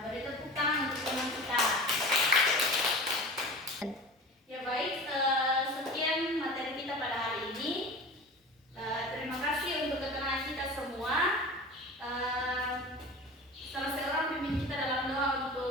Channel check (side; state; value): both; normal; correlation 0.35